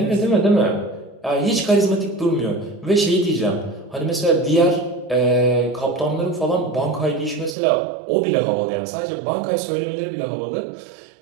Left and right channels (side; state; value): left; drops out; at 7.6 s